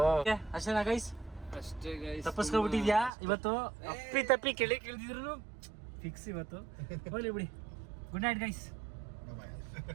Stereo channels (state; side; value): drops out; left; at 3.1 s